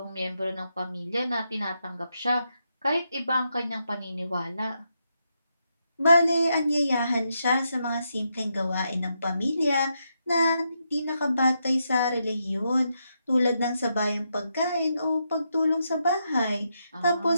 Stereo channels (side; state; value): both; inverted; correlation -0.82